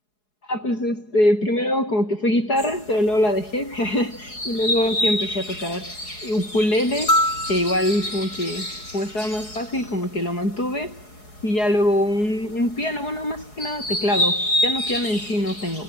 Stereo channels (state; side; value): late; right; 4.7 ms